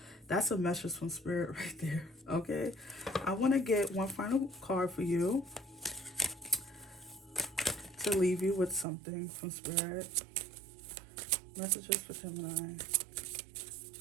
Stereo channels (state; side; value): drops out; left; at 8.8 s